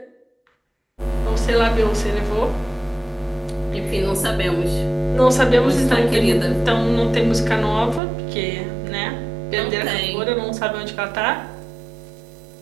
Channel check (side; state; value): left; drops out; at 8.0 s